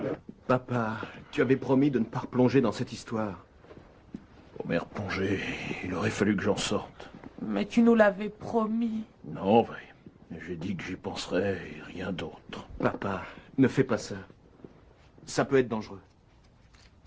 Papa, tu avais promis de ne pas replonger dans cette histoire. Pour m'y replonger, il aurait fallu que j'en sorte. Mais tu nous l'avais promis. Non, vrai. J'ai dit que j'y penserais et rien d'autre. Papa, ne fais pas ça. Ça peut être dangereux.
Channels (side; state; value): both; identical; correlation 1.00